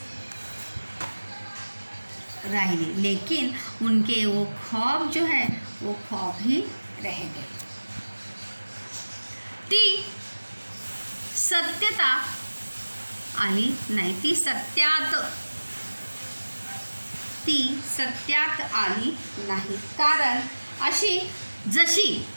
रही, लेकिन उनके वो ख्वाब जो है वो ख्वाब ही रह गए। ती सत्यता आली नाही, ती सत्यात आली नाही, कारण अशी जशी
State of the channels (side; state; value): both; inverted; correlation -1.00